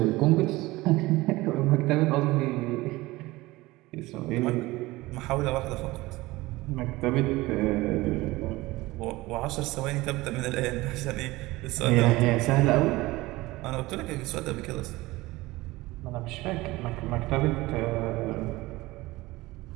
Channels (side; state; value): left; quieter; 19.8 dB